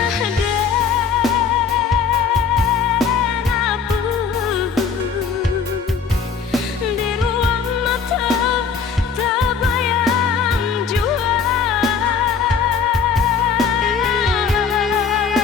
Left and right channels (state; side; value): quieter; right; 5.9 dB